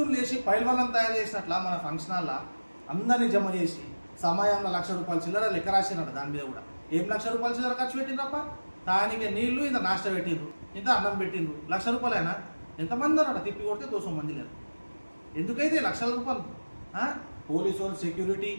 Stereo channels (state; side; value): inverted; both; correlation -1.00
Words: లేచి పైల్వాళ్ళని తయారు చేసినట్లా మన ఫంక్షన్ హాల్లో అందరినీ జమ చేసి సమయంలో ₹1,00,000 చిల్లర లెక్క రాసినాడు. దాని మీద కూడా ఏం ₹1,00,000 చిల్లర ఖర్చు పెట్టిండ్రప్ప? దానికి నీళ్లు ఇంత నాష్ట పెట్టిండ్రు, ఇంత అన్నం పెట్టిండ్రు. ₹1,00,000 అయినా ఎంతమంది అన్నాడు? తిప్పి కొడితే 200 మంది లేరు. ఎందుకైతే ₹1,00,000? పోలీసు వాళ్ళు సెక్యూరిటీ